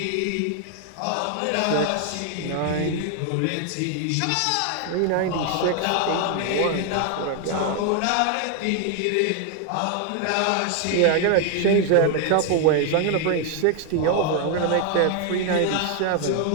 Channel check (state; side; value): different; both; correlation 0.00